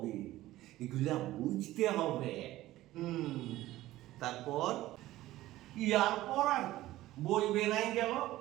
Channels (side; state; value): left; quieter; 15.9 dB